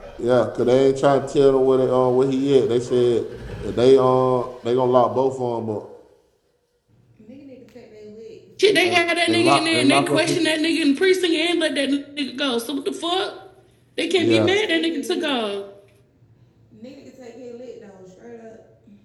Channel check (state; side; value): identical; both; correlation 1.00